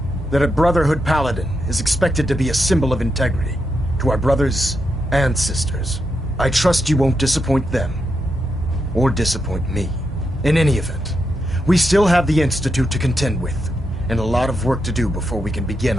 that a Brotherhood Paladin is expected to be a symbol of integrity to our brothers and sisters. I trust you won't disappoint them, or disappoint me. In any event, we still have the Institute to contend with, and a lot of work to do before we can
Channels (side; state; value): both; normal; correlation 0.84